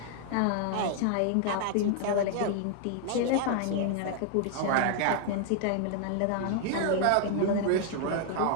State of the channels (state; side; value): different; both; correlation 0.00